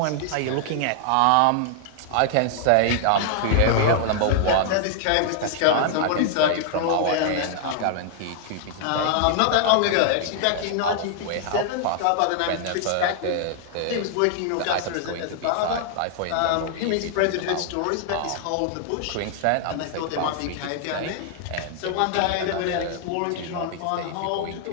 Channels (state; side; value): different; both; correlation -0.01